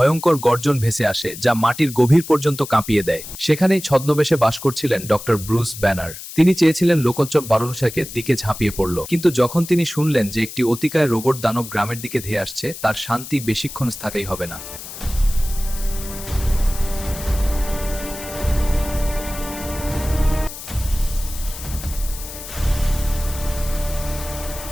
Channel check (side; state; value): left; noise; hiss, 12 dB below the sound